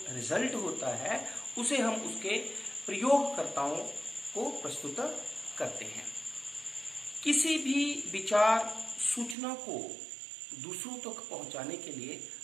रिजल्ट होता है उसे हम उसके प्रयोगकर्ताओं को प्रस्तुत करते हैं। किसी भी विचार सूचना को दूसरों तक पहुंचाने के लिए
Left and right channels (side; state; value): left; drops out; at 9.3 s